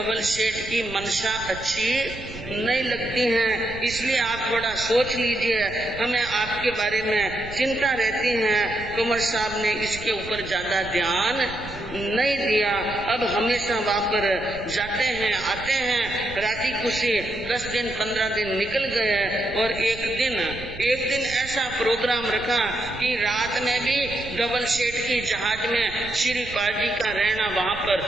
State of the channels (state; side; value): noise; right; rumble, 14 dB below the sound